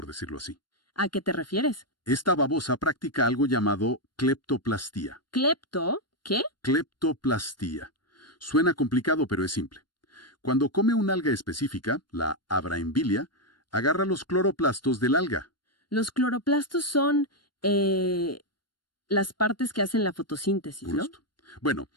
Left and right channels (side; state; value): right; late; 0.71 ms